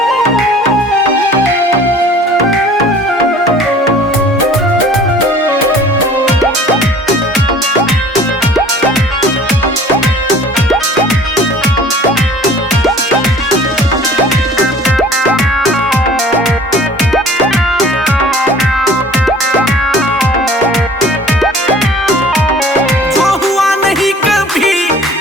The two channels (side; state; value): both; normal; correlation 0.48